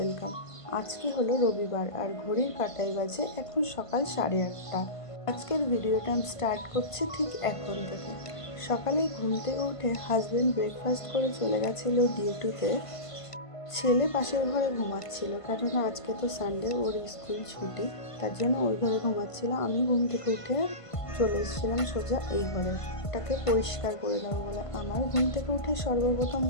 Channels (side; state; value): right; late; 1.5 ms